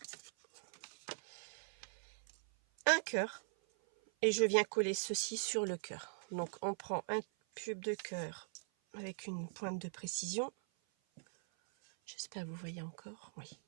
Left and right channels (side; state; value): left; silent; 51 dB below the other